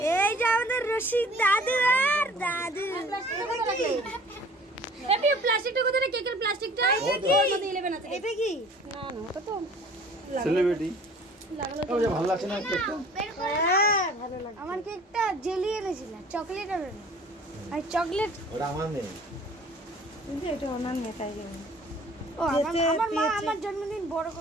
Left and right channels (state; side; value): normal; both; correlation 0.49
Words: এই যে আমাদের রশিদ দাদু আর দাদু। এপি প্লাস্টিকটা কত রে? কেকের প্লাস্টিকটা ওর মধ্যে 11 আছে। এটা কি? না না, ওটা তো সেলিব্রিটি ও যে ভালো লাগছে না কেকটা? হ্যাঁ ভালো লাগে। আমার কেকটা জেলি এনেছিল, চকলেট আর না। আর চকলেট ওটা আমার নেই। কিন্তু এটা ওনার নেতাই গেছে। ও যেতে আমার মা পেয়েছে। আমার জন্মদিন বড়